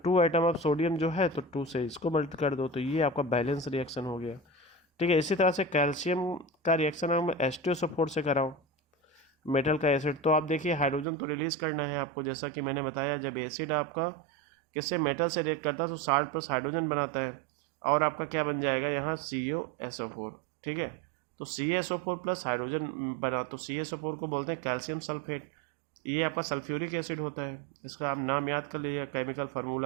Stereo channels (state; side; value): drops out; left; at 11.1 s